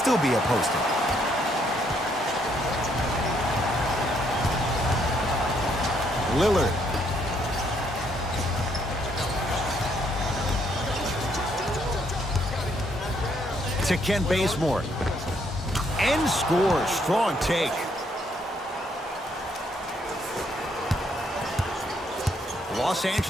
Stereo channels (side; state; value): both; normal; correlation 0.71